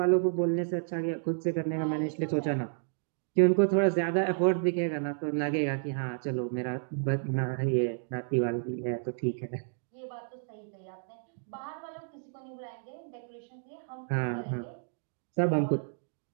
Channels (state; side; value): silent; left; digital silence